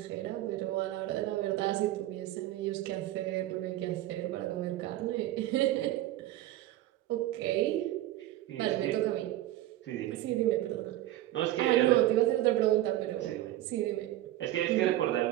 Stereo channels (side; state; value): left; quieter; 14.6 dB